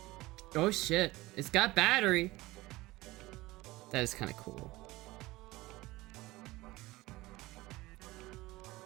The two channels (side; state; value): left; quieter; 19.7 dB